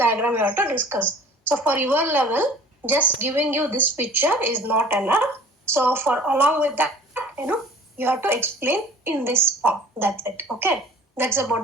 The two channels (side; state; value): both; normal; correlation 0.47